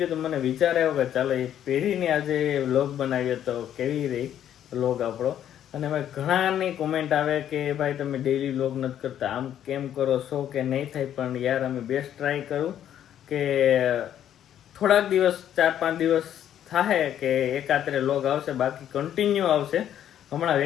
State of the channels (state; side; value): quieter; right; 10.5 dB